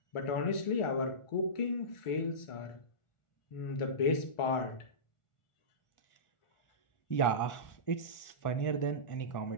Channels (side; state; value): right; late; 1.4 ms